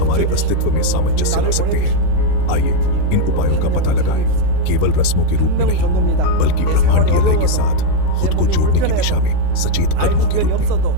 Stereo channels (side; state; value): both; different; correlation 0.01